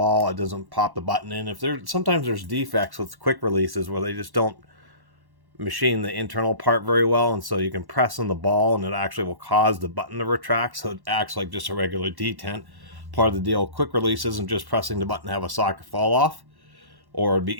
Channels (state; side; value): late; left; 1.1 ms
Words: it doesn't pop the button in. Sometimes there's defects with quick releases where they just don't machine the internal part very well, and so you can press on the ball and it actually will cause the button to retract, so it acts like just a regular detent. Part of the deal with quick release isn't just pressing the button to have a socket fall off, or it'd